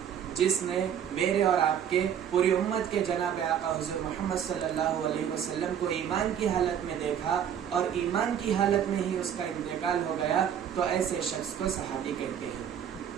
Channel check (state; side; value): quieter; left; 9.0 dB